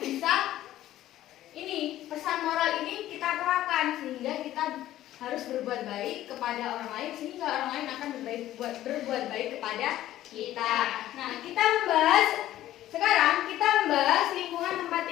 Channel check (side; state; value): right; quieter; 13.8 dB